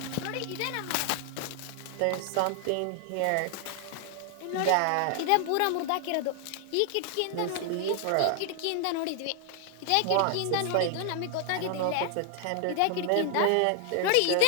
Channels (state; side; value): different; both; correlation 0.00